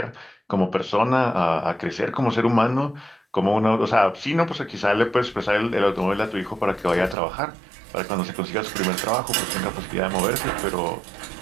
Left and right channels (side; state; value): left; drops out; at 7.2 s